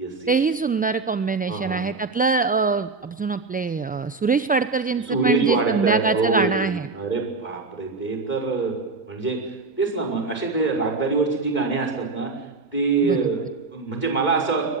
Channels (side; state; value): left; quieter; 3.9 dB